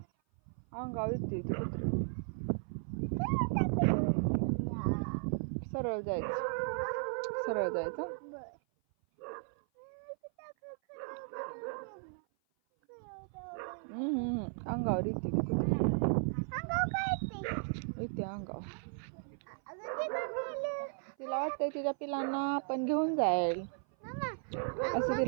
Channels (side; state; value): left; silent; 54 dB below the other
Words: अंगावर येते ती कुत्री. सरळ जायचं. सरळ जायचं. अंगावर येते ती कुत्री. अंगावर काय येते? येते अंगावर. अगं ते काय नेलं? तिला वाटतंय तिच्या पिलांना आपण घेऊन जाईल मामा, असं